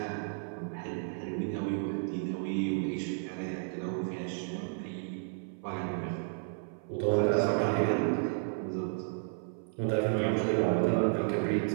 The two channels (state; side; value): silent; left; 56 dB below the other